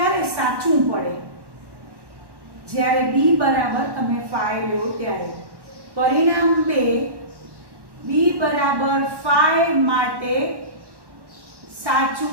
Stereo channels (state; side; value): late; left; 1.1 ms